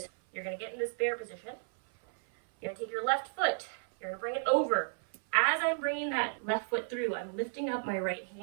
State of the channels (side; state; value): left; silent; 56 dB below the other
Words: you're going to get in this bear position. You're going to take your left foot. You're going to bring it over. As I'm bringing that left foot through, I'm lifting up my right